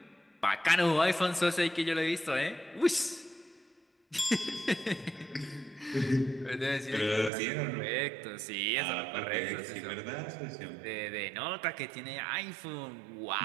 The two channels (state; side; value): drops out; left; at 7.3 s